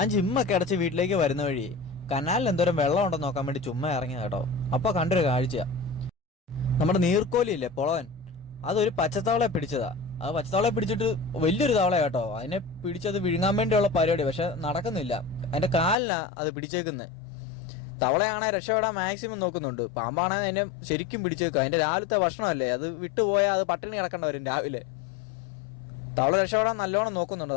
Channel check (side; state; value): right; drops out; at 16.0 s